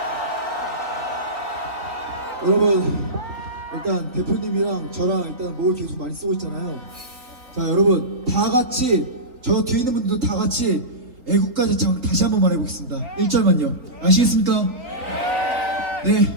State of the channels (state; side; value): late; left; 3.9 ms